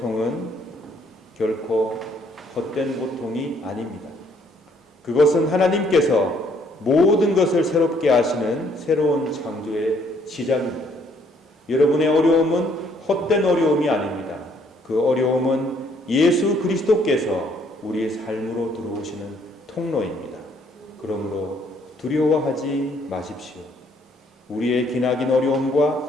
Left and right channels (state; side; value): normal; both; correlation 0.66